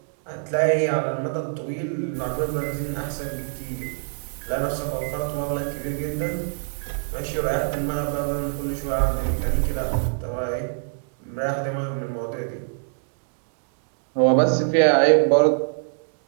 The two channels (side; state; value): left; silent; digital silence